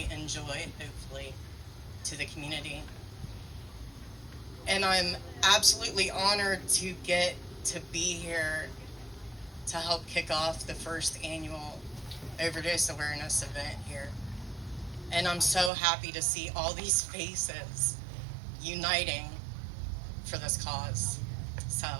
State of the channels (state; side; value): drops out; left; at 15.7 s